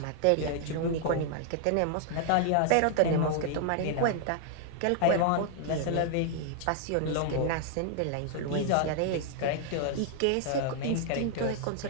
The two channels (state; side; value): different; both; correlation 0.00